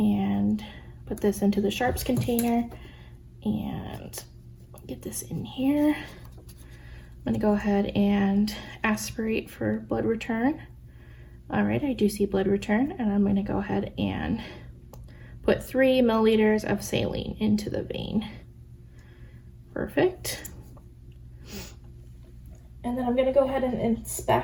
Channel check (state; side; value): identical; both; correlation 1.00